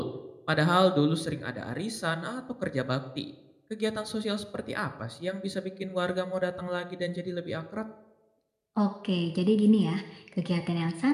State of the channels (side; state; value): both; identical; correlation 1.00